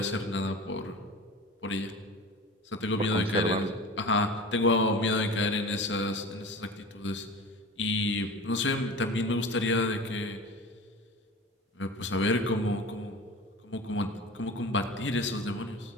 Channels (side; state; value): both; normal; correlation 0.35